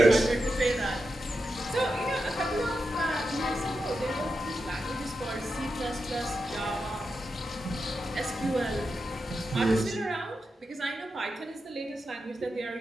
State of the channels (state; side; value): normal; both; correlation 0.88